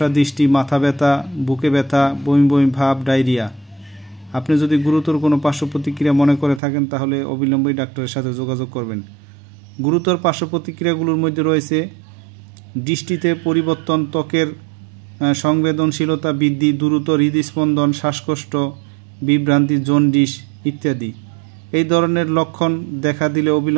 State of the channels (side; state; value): left; drops out; at 6.6 s